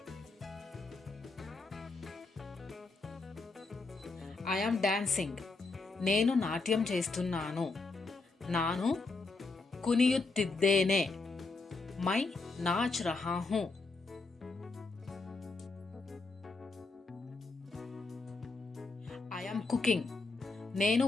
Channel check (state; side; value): quieter; right; 3.8 dB